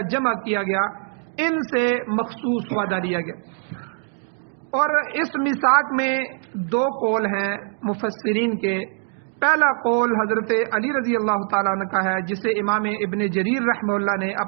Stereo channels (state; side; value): silent; left; 57 dB below the other